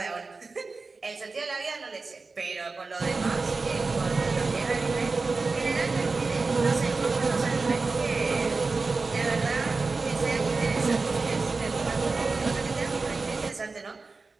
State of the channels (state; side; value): quieter; left; 4.0 dB